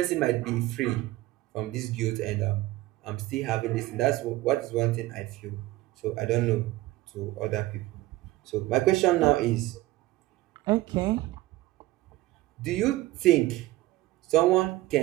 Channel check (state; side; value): quieter; left; 17.7 dB